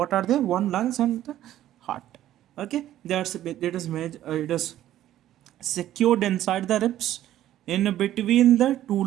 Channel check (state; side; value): quieter; left; 12.8 dB